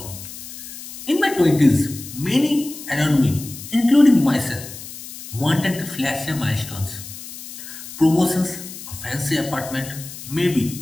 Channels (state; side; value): noise; left; hiss, 12 dB below the sound